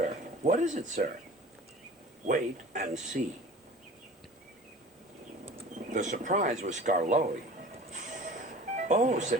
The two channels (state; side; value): normal; both; correlation 0.42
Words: What is it, sir? Wait and see. The surprise was Skarloey. Oh,